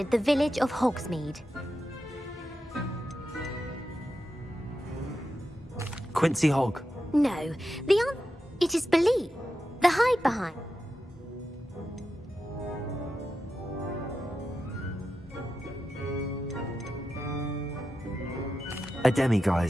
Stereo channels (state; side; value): normal; both; correlation 0.89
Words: the village of Hogsmeade? Quincy Hogg. No, it is believed. The hide behind. A